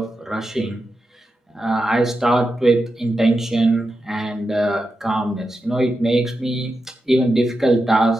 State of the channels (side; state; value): both; normal; correlation 0.89